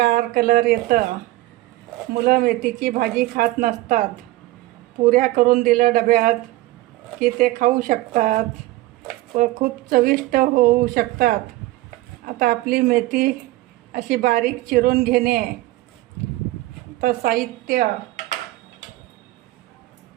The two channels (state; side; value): quieter; left; 18.0 dB